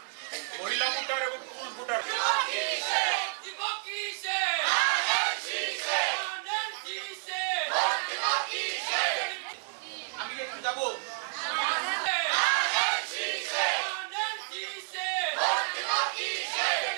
মহিলা ভোটার এবং পুরুষ ভোটার। আমি একটু যাবো।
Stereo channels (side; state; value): left; silent; 58 dB below the other